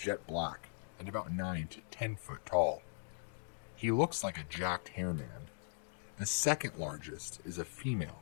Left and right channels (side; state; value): right; silent; digital silence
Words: black and about 9 to 10 foot tall. He looks like a jacked hair man. The second largest is a female,